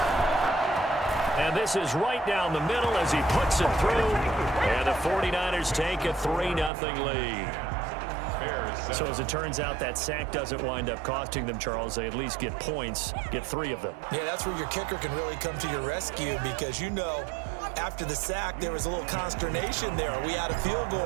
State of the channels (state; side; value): drops out; left; at 6.7 s